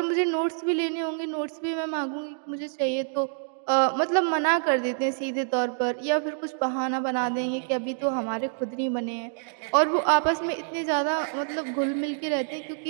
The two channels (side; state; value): left; silent; digital silence